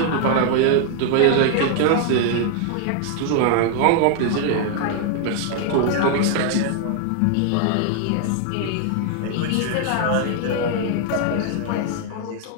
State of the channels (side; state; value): both; different; correlation 0.00